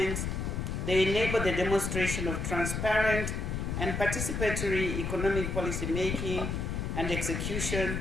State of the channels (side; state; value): left; noise; rumble, 2 dB below the sound